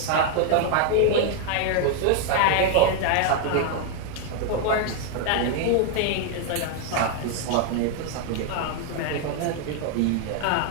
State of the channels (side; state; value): both; different; correlation 0.00